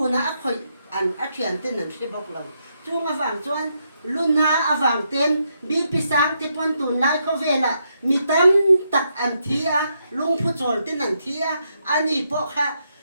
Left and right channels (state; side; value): inverted; both; correlation -0.79